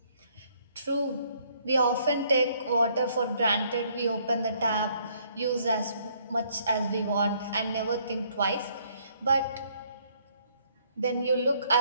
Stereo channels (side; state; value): both; inverted; correlation -0.66